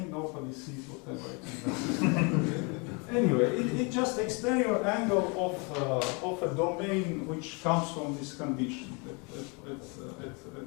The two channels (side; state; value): right; quieter; 31.8 dB